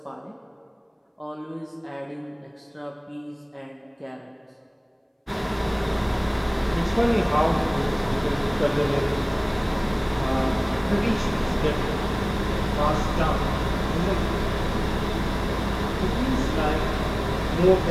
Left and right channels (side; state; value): both; identical; correlation 1.00